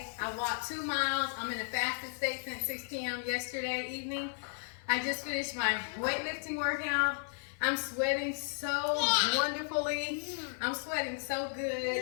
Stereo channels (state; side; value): silent; right; 55 dB below the other